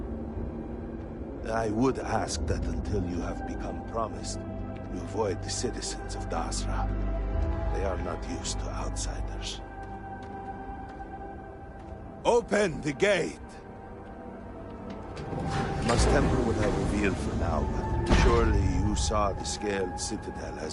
I would ask that until you have become promised, you avoid the citizens of Dazra. They are not used to outsiders. Open the gate! I must temper what I reveal for now, but surely you saw the scaled citadel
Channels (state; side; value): identical; both; correlation 1.00